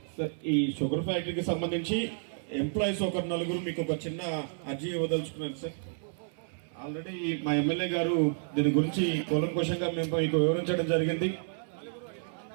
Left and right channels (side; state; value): left; silent; 57 dB below the other